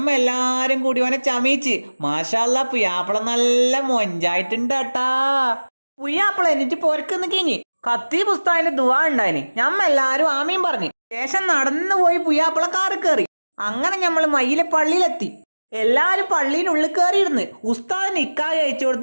എല്ലാരും കൂടി ഓനെ ചമയിച്ച്. മാഷാല്ലാ, പുയ്യാപ്പിള നല്ല മൊഞ്ചായിട്ടുണ്ട് കേട്ടാ. പുയ്യാപ്പിള എന്നിട്ട് പൊരക്കുന്ന് കിഞ്ഞി കത്തി പുസ്തകത്തിന്റെ ദുവാ ഉണ്ടായിന്. ഞമ്മ എല്ലാരും ആമീൻ പറഞ്ഞു. ശേഷം നടന്നു പോയി പുയ്യാപ്പിള കാറ് കയറി. അങ്ങനെ ഞമ്മള് മയിലെ പള്ളിയിലെത്തി. എല്ലാരും പള്ളിയിനുള്ളിൽ കയറിയിരുന്ന് ഉസ്താദ് നിക്കാഹ് കഴിച്ചു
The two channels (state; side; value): inverted; both; correlation -1.00